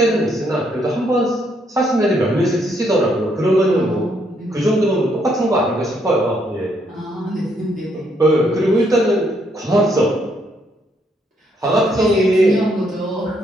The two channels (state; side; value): normal; both; correlation 0.73